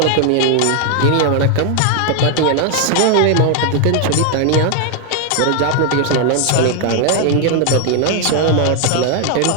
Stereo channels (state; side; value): different; both; correlation 0.00